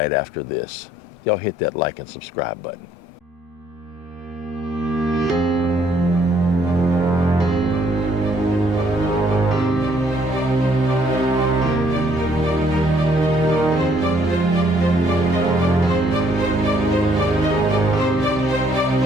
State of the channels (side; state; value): both; normal; correlation 0.67